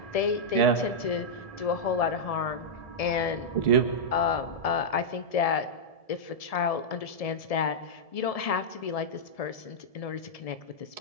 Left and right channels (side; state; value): right; late; 1.7 ms